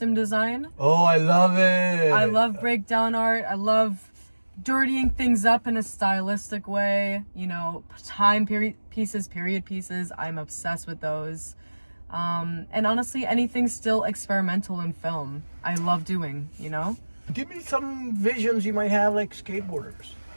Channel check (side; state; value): both; inverted; correlation -1.00